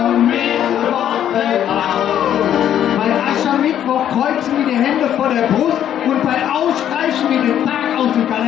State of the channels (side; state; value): right; quieter; 10.4 dB